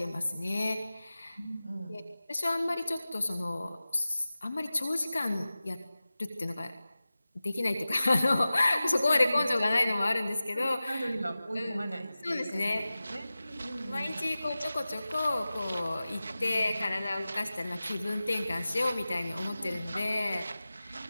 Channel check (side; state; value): both; inverted; correlation -0.96